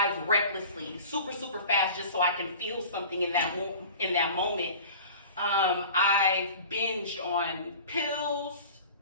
recklessly, super, super fast, just so I can feel something in that moment. I've binged on pills,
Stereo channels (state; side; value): inverted; both; correlation -0.40